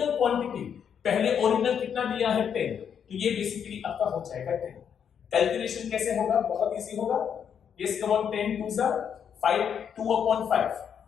क्वांटिटी पहले ओरिजिनल कितना दिया है? 10, तो ये बेसिकली आपका हो जाएगा 10। कैलकुलेशन कैसे होगा? बहुत इजी होगा। यस कम ऑन, 10 2 जा 5, 2 अपॉन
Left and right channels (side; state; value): right; quieter; 7.9 dB